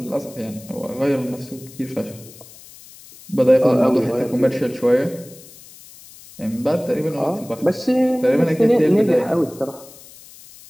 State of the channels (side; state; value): left; noise; hiss, 21 dB below the sound